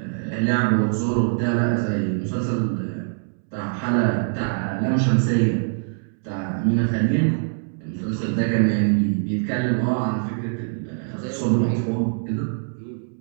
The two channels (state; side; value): silent; left; 63 dB below the other